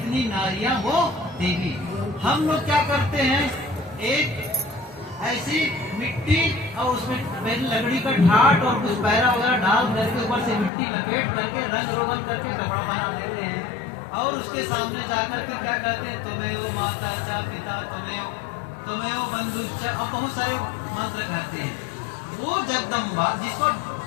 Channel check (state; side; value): drops out; right; at 10.7 s